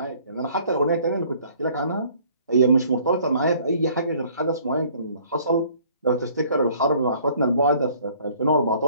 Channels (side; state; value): both; inverted; correlation -0.57